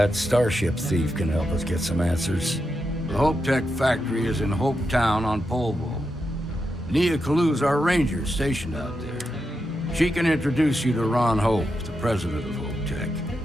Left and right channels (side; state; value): both; normal; correlation 0.86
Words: starship thief can help us get some answers. The Hope Tech factory is in Hope Town on Polvo. Nia Kalu's our ranger stationed out there. She can introduce you to Ron Hope, the president of Hope Tech.